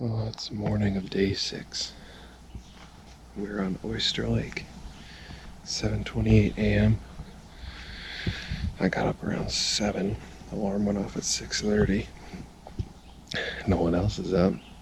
it's morning of day 6. We're on Oyster Lake. 7:28 a.m. I got up around 7. Alarm went off at 6:30. No one else is up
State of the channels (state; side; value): identical; both; correlation 1.00